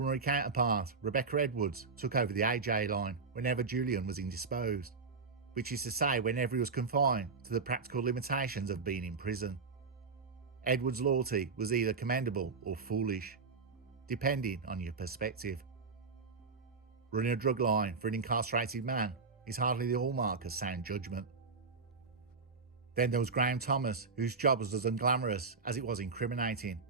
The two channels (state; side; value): quieter; left; 4.6 dB